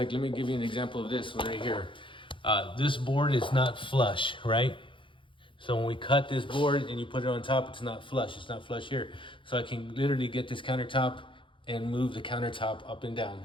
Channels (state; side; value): late; right; 0.25 ms